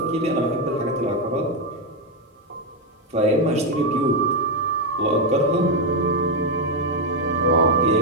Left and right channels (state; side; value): normal; both; correlation 0.05